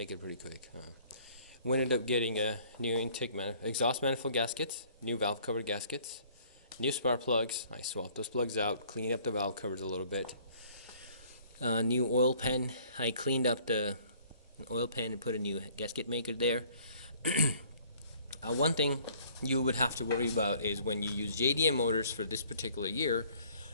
it pretty quick. We ended up getting a new exhaust manifold gaskets, new valve cover gaskets, new spark plugs. I swapped those plugs out, cleaned up the valve covers a little bit. New oil pan. I cleaned up the oil pan and put a new gasket maker there. One thing you would have to worry about is when you use JDM motors for this particular year,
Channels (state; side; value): inverted; both; correlation -0.57